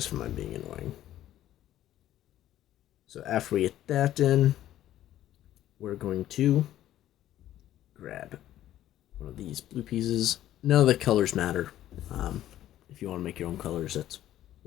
for my being annoying. So after we get that in, we're going to grab one of these blue pieces. None of the colors matter. If you want to make your own colors, that's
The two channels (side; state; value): right; quieter; 12.9 dB